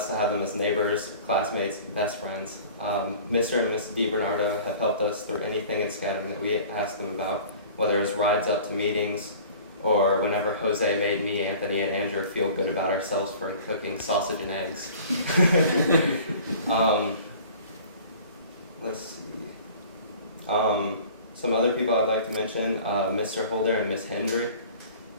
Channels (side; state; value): both; inverted; correlation -0.45